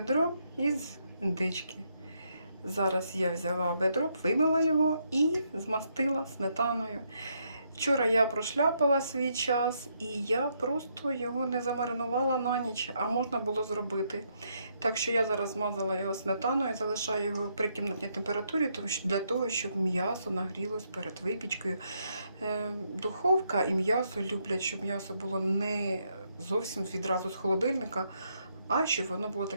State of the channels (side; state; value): both; inverted; correlation -0.76